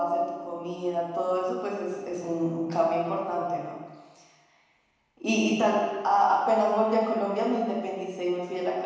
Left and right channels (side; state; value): both; identical; correlation 1.00